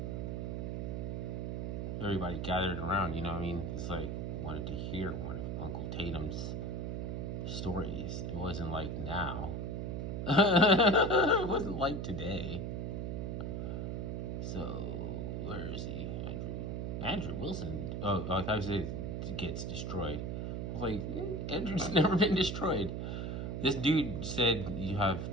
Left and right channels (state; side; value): noise; right; hum, 2 dB below the sound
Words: Everybody gathered around, you know what I mean? It's like, wanted to hear one of Uncle Tatum's stories. It wasn't like now. It wasn't like today. So, where is he? Andrew Wilson. Oh, I thought he said gets destroyed. I was like, Andrew's never been destroyed. This dude said you have